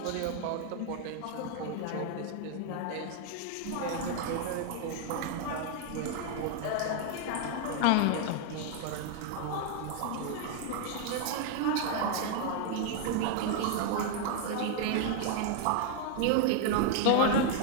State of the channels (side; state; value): both; different; correlation 0.00